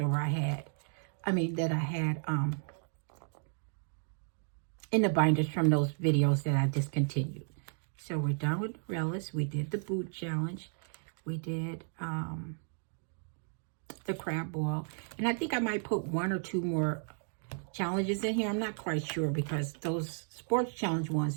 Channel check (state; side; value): silent; left; 55 dB below the other